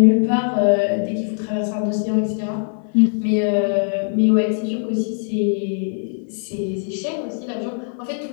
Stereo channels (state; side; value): silent; right; 59 dB below the other